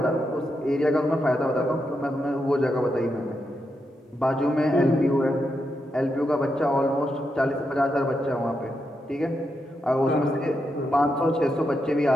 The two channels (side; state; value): both; normal; correlation 0.84